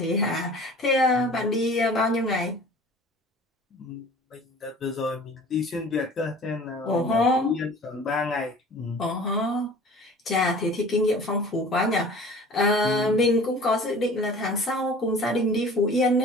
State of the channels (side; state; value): both; normal; correlation 0.45